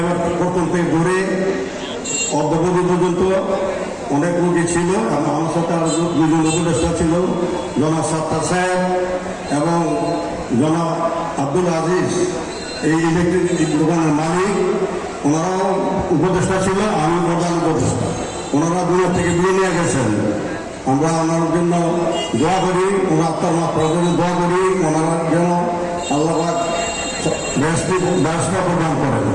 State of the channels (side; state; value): both; identical; correlation 1.00